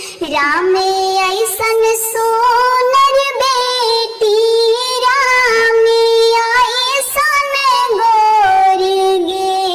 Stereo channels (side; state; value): both; identical; correlation 1.00